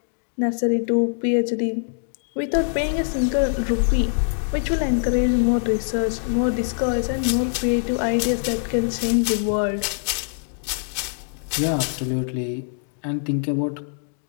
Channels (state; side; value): silent; right; digital silence